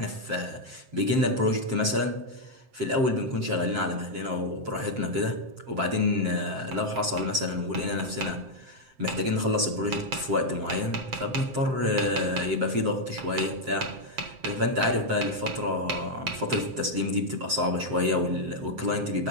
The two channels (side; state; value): left; late; 7.6 ms